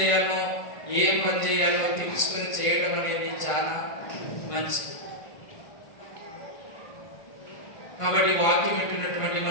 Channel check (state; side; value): late; right; 1.4 ms